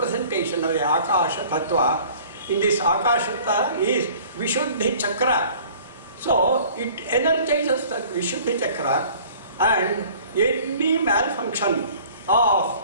of the Akasha Tattva. In this Akasha Tattva is Vishuddhi Chakra. So, it energizes the Vishuddhi Chakra, and any malfunction of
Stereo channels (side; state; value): both; inverted; correlation -0.50